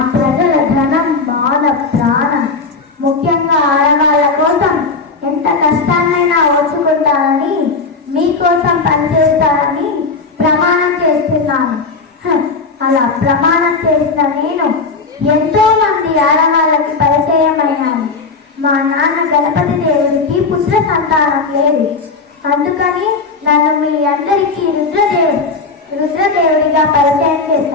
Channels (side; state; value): right; quieter; 4.3 dB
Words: ప్రజల ధనం మాన ప్రాణం ముఖ్యంగా ఆడవాళ్ళ కోసం ఎంత కష్టాన్నైనా ఓర్చుకుంటానని మీకోసం పనిచేస్తానని ప్రమాణం చేస్తున్నాను. అలా ప్రమాణం చేసిన నేను ఎంతో మంది ఆడవాళ్ళకి పరిచయమయ్యాను. మా నాన్న గణపతి దేవుడికి పుత్ర సంతానం లేదు. అందుకని నన్ను మీ అందరికీ రుద్రదేవుడిగా పరిచయం